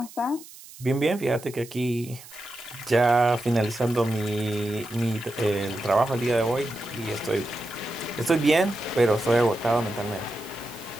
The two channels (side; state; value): right; noise; hiss, 18 dB below the sound